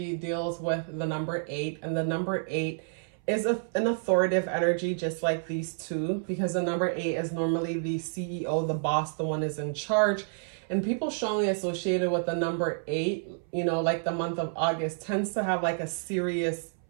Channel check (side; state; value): left; silent; 58 dB below the other